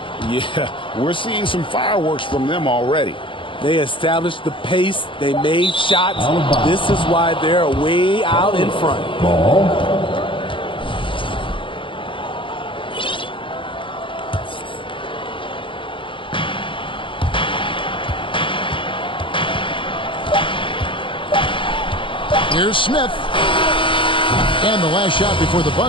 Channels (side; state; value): right; late; 0.25 ms